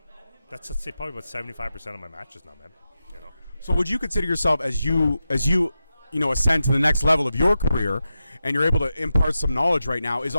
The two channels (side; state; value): both; inverted; correlation -0.91